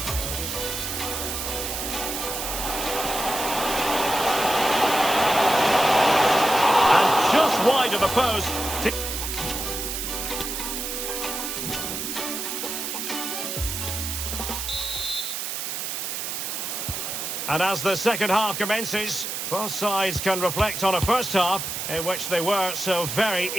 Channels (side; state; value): right; noise; hiss, 4 dB below the sound